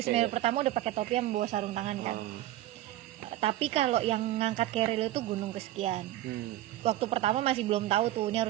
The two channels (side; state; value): left; quieter; 14.5 dB